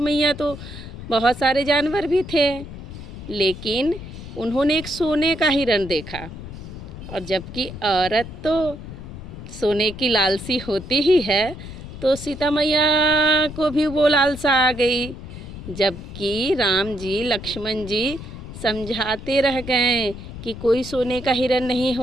तो बहुत सारे जानवर भी थे। लेकिन उन्होंने एक सोने का हिरण देखा, और जबकि औरत तो सोने की लालसी होती ही है, तो सीता मैया को भी वो लालसा आ गई। जबकि राम जी, लक्ष्मण जी समझाते रह गए कि कोई सोने का हिरण नहीं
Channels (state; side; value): noise; left; rumble, 12 dB below the sound